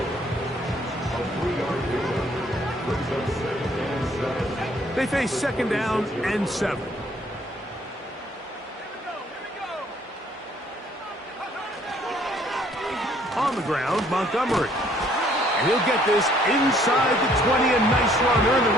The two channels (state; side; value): normal; both; correlation 0.62